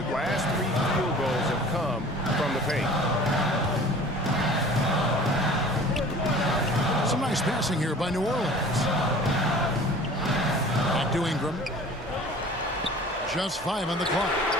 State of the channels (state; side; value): normal; both; correlation 0.45